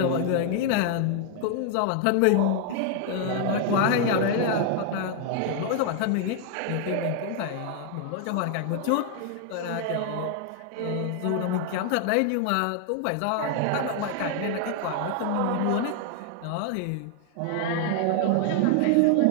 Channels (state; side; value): different; both; correlation 0.00